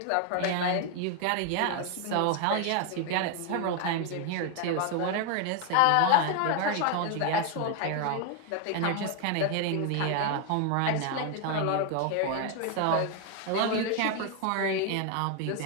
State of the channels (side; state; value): both; different; correlation 0.01